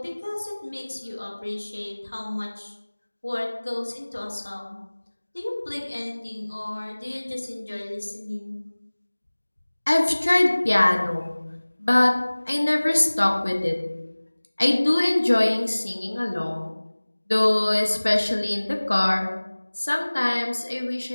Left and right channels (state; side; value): inverted; both; correlation -1.00